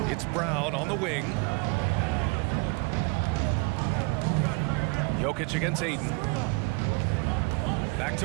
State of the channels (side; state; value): left; quieter; 30.4 dB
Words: It's Brown on the wing. Jokic against Ayton. Back to